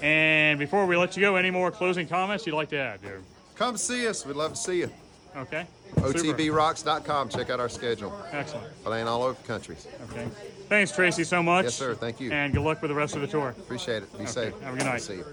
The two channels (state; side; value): identical; both; correlation 1.00